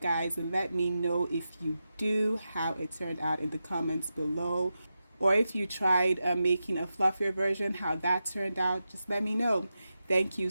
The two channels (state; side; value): inverted; both; correlation -0.90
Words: and let me know if you do, how it turned out in the comments below. Or if you tried making a fluffier version, how that turned out, just let me know. Thank you